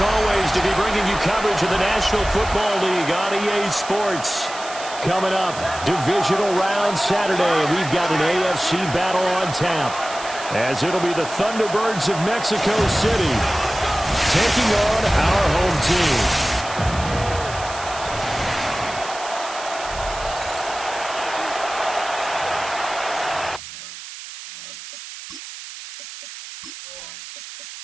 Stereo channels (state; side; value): noise; right; hiss, 12 dB below the sound